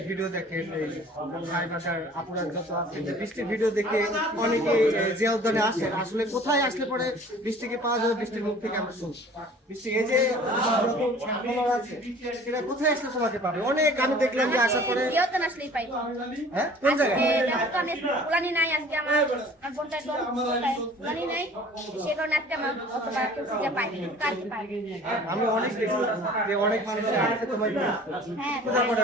ভিডিও দেখেন, এই ভাই বাসার আপুরা যত আছে, বৃষ্টির ভিডিও দেখে অনেকে যে উদ্যানে আসেন, আসলে কোথায় আসলে পরে বৃষ্টিকে পাওয়া যাবে, বৃষ্টির মুখ থেকে আমরা শুনি। বৃষ্টি এই যে আছে, সেটা কোথায় আসলে সবাইকে পাবে? অনেক আমি দেখলাম যে আসার পরে আসলেই পাই। হ্যাঁ, কোন জায়গায় উলানি নাই আজকে আমার বোনটা উলানি নাই, সে কারণে আজকে আমার অতটা খুঁজে পাই কালকে পাই। আমি অনেক দেখি যে অনেক মানুষ আসছে তোমার হ্যাঁ, খোঁজা করে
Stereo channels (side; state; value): both; normal; correlation 0.48